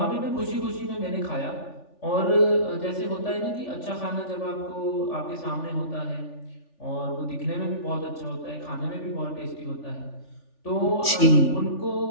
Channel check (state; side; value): late; right; 3.4 ms